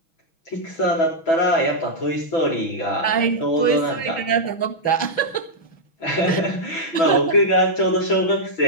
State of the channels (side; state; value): right; late; 6.1 ms